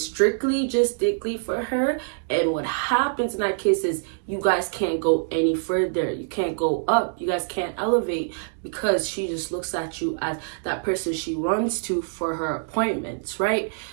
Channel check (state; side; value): silent; left; digital silence